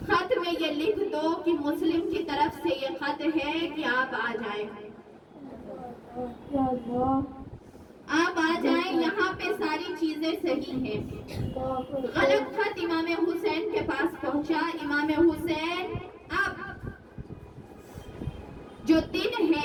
में ये लिख दो कि मुस्लिम की तरफ से ये खत है कि आप आ जाएं, आप आ जाएं, यहाँ पे सारी चीजें सही हैं। गलत खत इमाम हुसैन के पास पहुंचा। इमाम हुसैन अब जो दिन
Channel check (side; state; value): both; identical; correlation 1.00